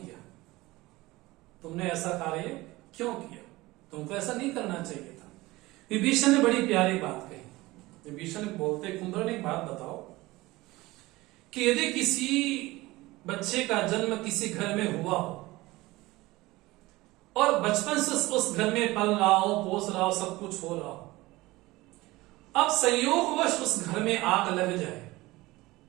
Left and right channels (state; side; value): quieter; left; 19.9 dB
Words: तुमने ऐसा कार्य क्यों किया, तुमको ऐसा नहीं करना चाहिए था। विभीषण ने बड़ी प्यारी बात कही। विभीषण बोलते, कुंभकर्ण एक बात बताओ कि यदि किसी बच्चे का जन्म किसी घर में हुआ हो और बचपन से उस घर में पल रहा हो, पोस रहा हो, सब कुछ हो रहा हो, अब संयोगवश उस घर में आग लग जाए,